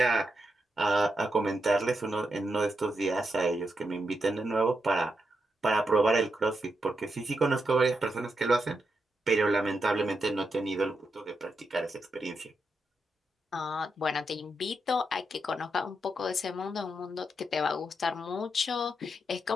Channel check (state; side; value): normal; both; correlation 0.84